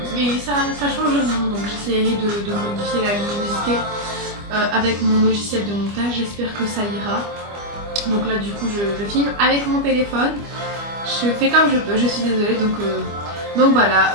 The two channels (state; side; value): late; left; 25 ms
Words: mais ça change rien, donc j'essaierai de modifier la luminosité avec mon logiciel de montage, j'espère que ça ira. Donc là du coup je filme avec mon téléphone, je fais comme je peux, je suis désolée, donc voilà.